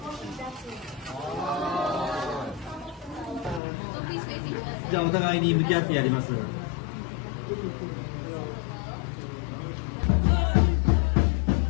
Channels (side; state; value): right; drops out; at 3.6 s